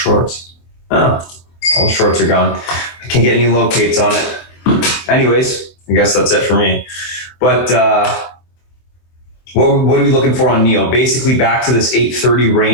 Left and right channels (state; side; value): late; right; 24 ms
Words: Oh, all the shorts are gone. I can't get any locates on it. Anyways, I guess that's it for me. But what are we looking for on NEO? Basically back to this 830